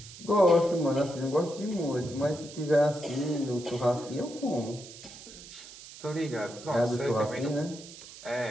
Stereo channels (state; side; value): noise; right; hiss, 16 dB below the sound